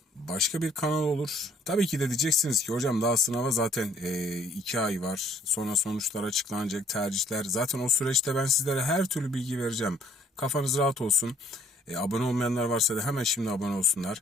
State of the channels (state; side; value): normal; both; correlation 0.61